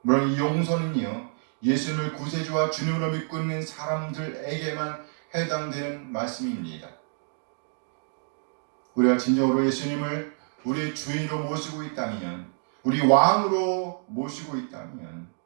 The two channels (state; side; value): silent; left; 60 dB below the other